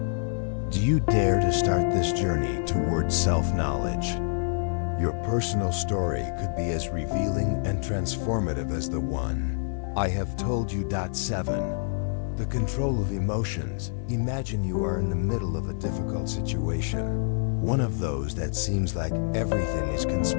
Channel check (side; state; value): right; silent; digital silence